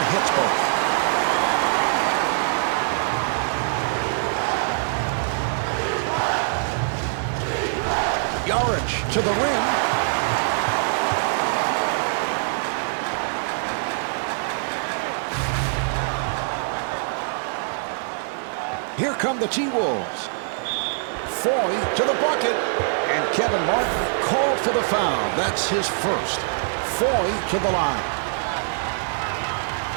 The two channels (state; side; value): silent; left; digital silence